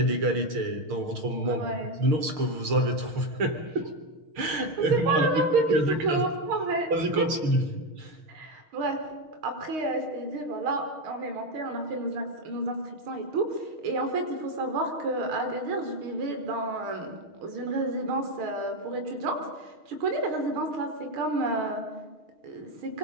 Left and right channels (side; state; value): left; late; 6.7 ms